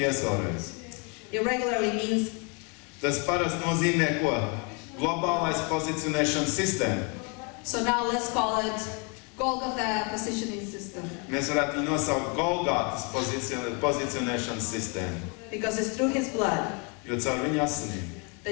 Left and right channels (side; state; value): right; quieter; 34.3 dB